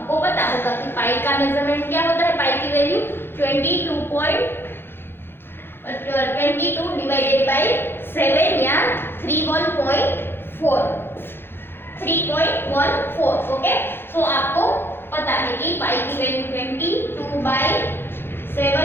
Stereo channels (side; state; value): right; late; 0.10 ms